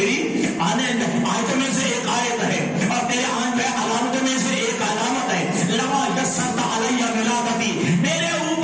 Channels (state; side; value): identical; both; correlation 1.00